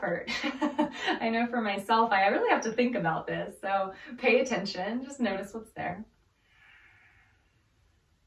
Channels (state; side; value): identical; both; correlation 1.00